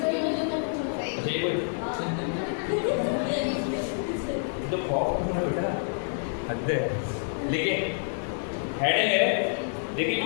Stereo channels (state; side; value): silent; right; 59 dB below the other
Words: अच्छा ये कोई तो बेटा हद है, लेकिन हेडिंग है। देखिए